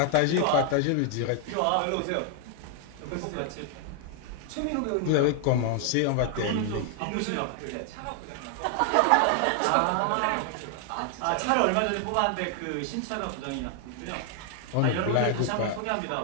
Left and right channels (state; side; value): different; both; correlation 0.00